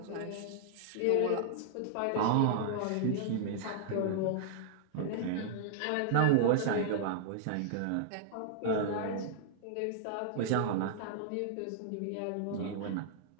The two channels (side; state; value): both; different; correlation -0.01